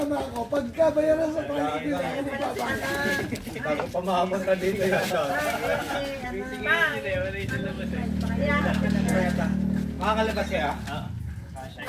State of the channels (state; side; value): identical; both; correlation 1.00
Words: ako. Pagka bayaran sa private, hindi ako magpapangit. Bago pamamot ka dito yan. Makakalabas siya?